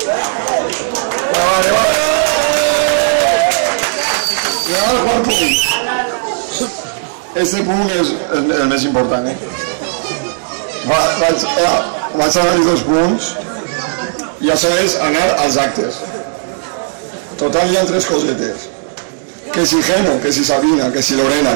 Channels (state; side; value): silent; left; digital silence